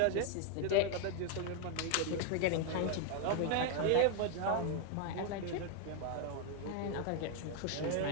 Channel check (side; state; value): both; different; correlation 0.00